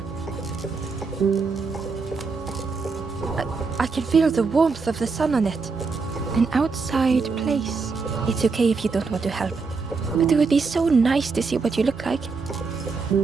I can feel the warmth of the sun on it. An outside place. It's okay if you don't want to help. But it would be so nice to see what you look like.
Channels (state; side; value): quieter; left; 4.6 dB